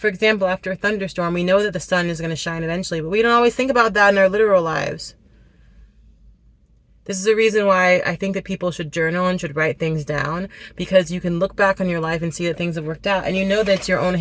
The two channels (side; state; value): both; identical; correlation 1.00